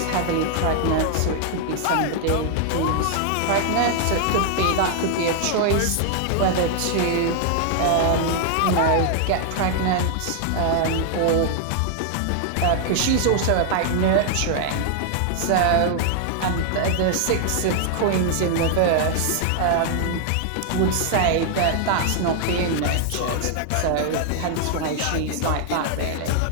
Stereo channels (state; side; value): different; both; correlation 0.00